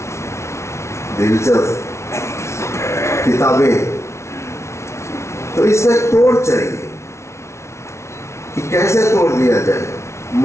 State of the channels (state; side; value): late; right; 0.13 ms